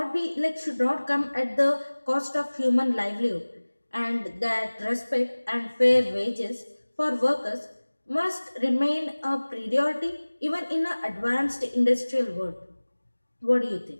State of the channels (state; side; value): inverted; both; correlation -1.00